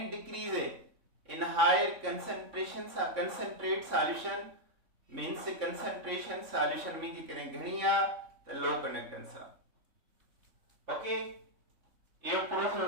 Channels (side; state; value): left; late; 3.5 ms